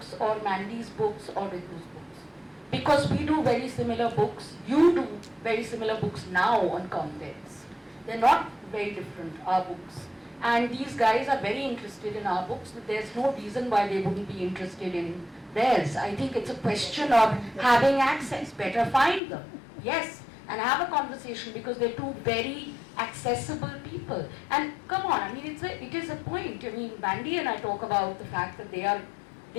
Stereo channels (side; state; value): right; drops out; at 19.2 s